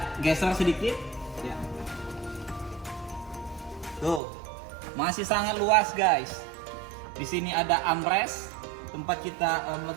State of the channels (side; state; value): left; drops out; at 4.2 s